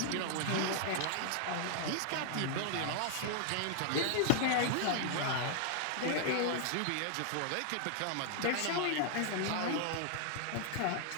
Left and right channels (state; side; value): different; both; correlation 0.00